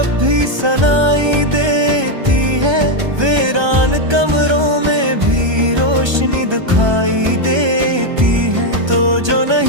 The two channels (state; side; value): late; left; 1.3 ms